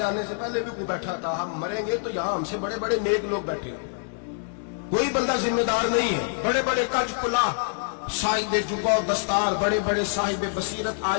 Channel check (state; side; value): silent; right; digital silence